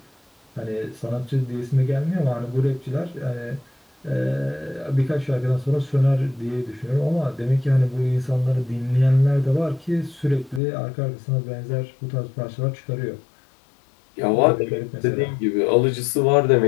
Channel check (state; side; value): drops out; right; at 10.6 s